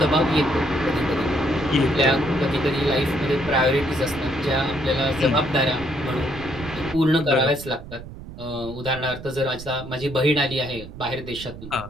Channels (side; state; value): right; noise; rumble, 13 dB below the sound